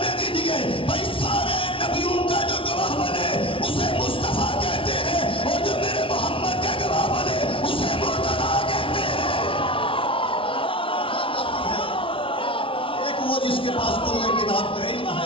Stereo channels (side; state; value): right; late; 0.25 ms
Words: دیجیے بھائی سارے نبیوں کا جو گواہ بنے اسے مصطفیٰ کہتے ہیں اور جو میرے محمد کا گواہ بنے اسے مرتضیٰ کہتے ہیں ایک وہ جس کے پاس کل کتاب کا علم